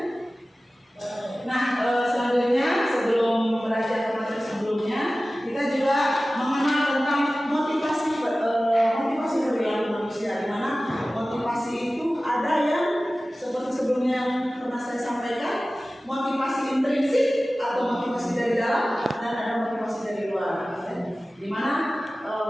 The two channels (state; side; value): normal; both; correlation 0.96